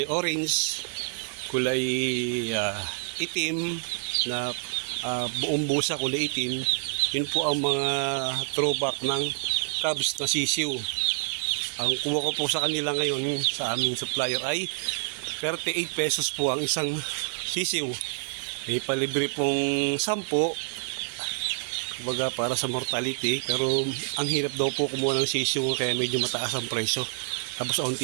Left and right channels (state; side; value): silent; left; digital silence